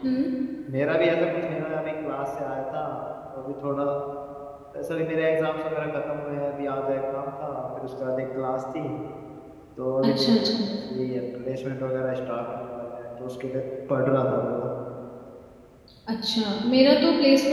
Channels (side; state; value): both; identical; correlation 1.00